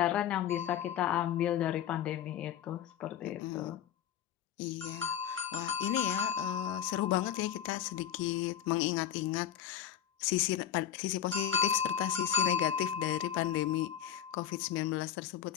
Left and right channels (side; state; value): right; quieter; 9.8 dB